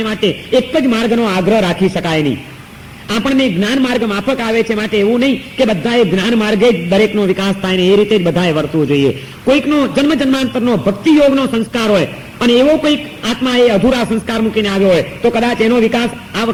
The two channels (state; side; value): identical; both; correlation 1.00